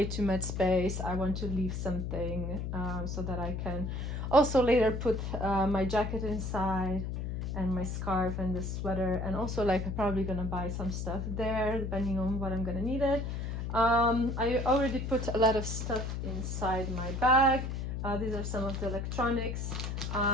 too much space. I want to leave something so that I can also later put my jacket inside and my scarf and the sweater, and also like I'm probably gonna buy some stuff there depending on what I'm gonna need it. I already put a lot of stuff inside my bag. These are some of the electronics.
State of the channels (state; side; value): noise; left; hum, 3 dB below the sound